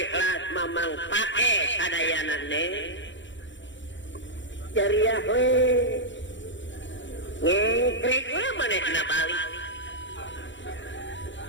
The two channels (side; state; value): right; late; 0.54 ms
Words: Mamang pake sadayana Neng jariah we ngekrik we manehna balik